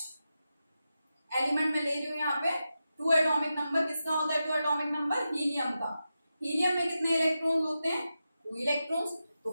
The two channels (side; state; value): both; inverted; correlation -0.90